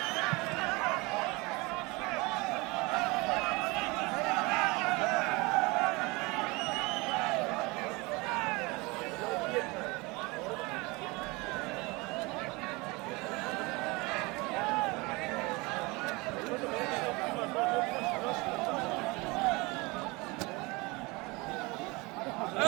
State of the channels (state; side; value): quieter; left; 25.1 dB